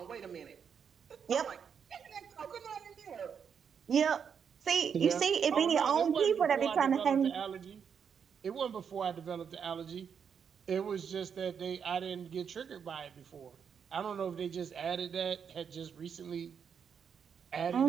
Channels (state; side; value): quieter; left; 7.2 dB